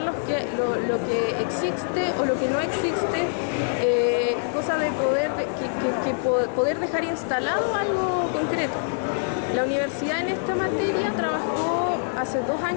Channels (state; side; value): silent; right; digital silence